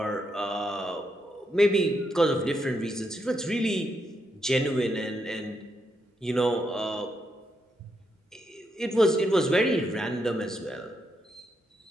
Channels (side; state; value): both; normal; correlation 0.80